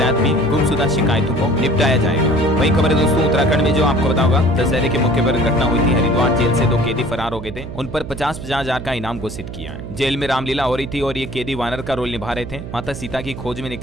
भी गुमशुदा शिकायतों को निपटाया जाएगा। वही खबर है दोस्तों, उत्तराखंड में जो आपको पता होगा, दशहरे के मौके पर घटना हुई थी। हरिद्वार जेल से 2 कैदी फरार हो गए थे, उन पर 50-50 हजार का इनाम घोषित किया है। जेल में रामलीला हो रही थी और ये कैदी वानर का रोल निभा रहे थे। माता सीता की खोज में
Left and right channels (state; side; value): noise; right; hum, 10 dB below the sound